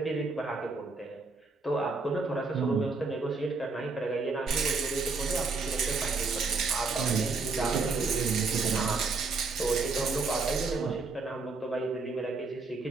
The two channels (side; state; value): left; quieter; 4.0 dB